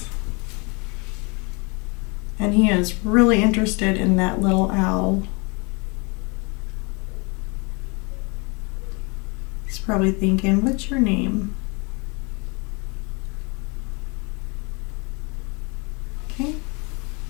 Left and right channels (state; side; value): quieter; right; 30.5 dB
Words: and he is really interested in that little owl. He's probably thinking, what's your name? Okay.